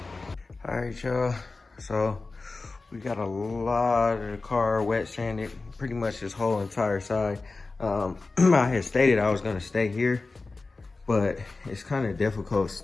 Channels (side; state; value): right; quieter; 3.7 dB